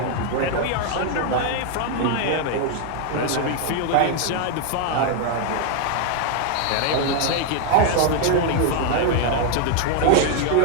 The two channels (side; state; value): both; different; correlation 0.00